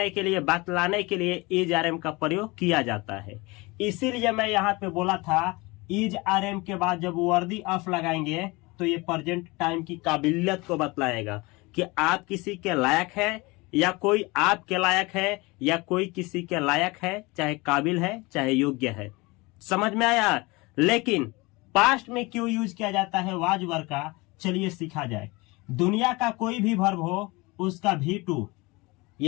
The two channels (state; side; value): quieter; right; 24.2 dB